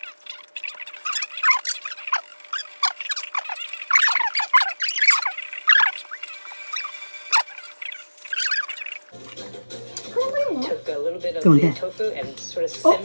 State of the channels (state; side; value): inverted; both; correlation -1.00